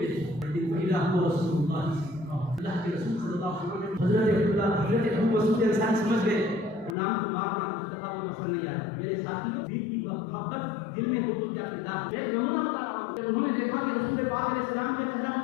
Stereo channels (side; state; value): right; drops out; at 7.0 s